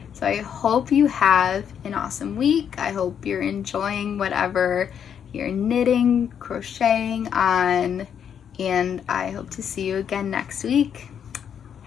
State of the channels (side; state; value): right; quieter; 8.3 dB